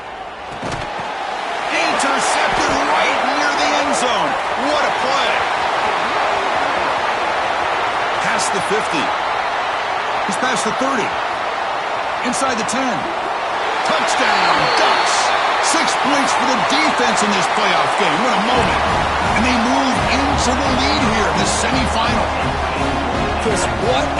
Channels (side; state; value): both; identical; correlation 1.00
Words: Intercepted right near the end zone. What a play. Past the 50. He's past the 30. Inside the 10. Touchdown, Ducks. 6 points for the defense in this playoff game. What a moment. And they move into the lead here in the semifinal. Chris, what